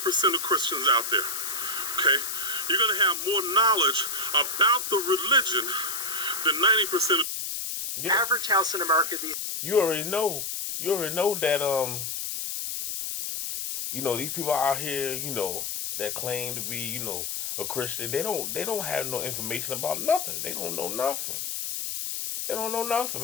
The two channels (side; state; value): left; noise; hiss, 4 dB below the sound